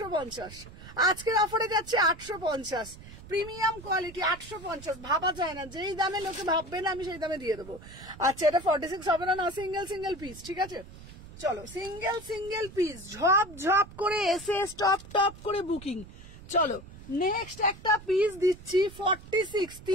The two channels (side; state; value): right; noise; rumble, 17 dB below the sound